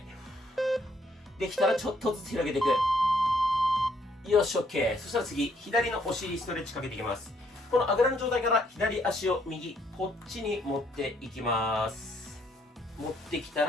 できたらちょっとずつ広げていく。よし OK。 そしたら次左のお尻ストレッチかけていきます。このあぐらの状態から左足を右こっちに持っていきます。持ってきた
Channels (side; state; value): both; normal; correlation 0.69